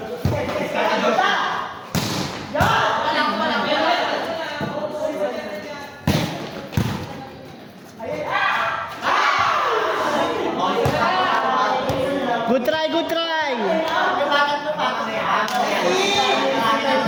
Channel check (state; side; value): identical; both; correlation 1.00